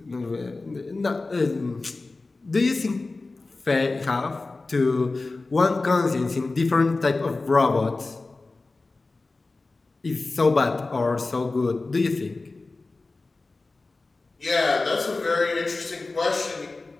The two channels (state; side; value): quieter; right; 3.5 dB